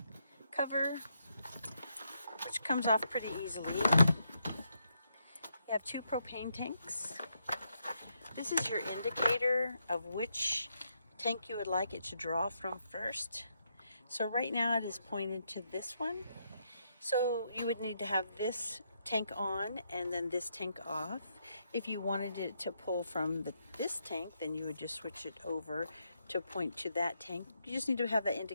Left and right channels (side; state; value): both; inverted; correlation -0.79